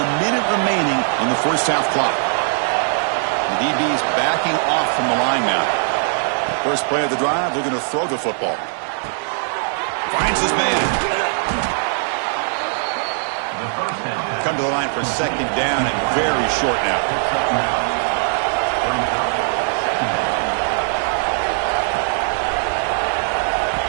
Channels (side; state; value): left; silent; 65 dB below the other